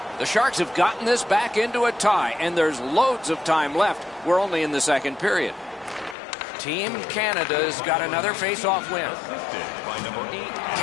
The Sharks have gotten this back into a tie, and there's loads of time left. We're only in the second period. Team Canada's got another face-off win.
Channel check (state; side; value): drops out; right; at 6.2 s